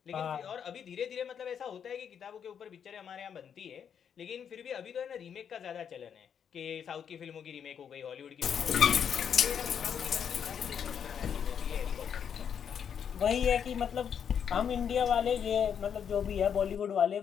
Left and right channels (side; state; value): right; quieter; 7.9 dB